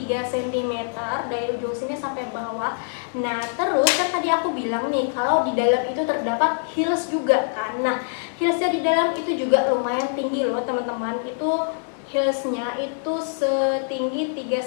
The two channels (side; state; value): right; silent; digital silence